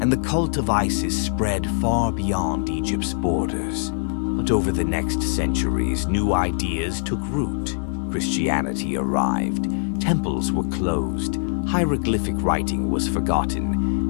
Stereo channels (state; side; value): silent; right; 64 dB below the other